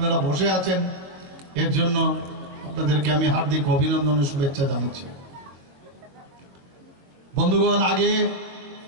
বসে আছেন, এর জন্য আপনাদেরকে আমি হার্দিক অভিনন্দন ও শুভেচ্ছা জানাচ্ছি। বন্ধুগণ, আগে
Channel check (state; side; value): late; left; 22 ms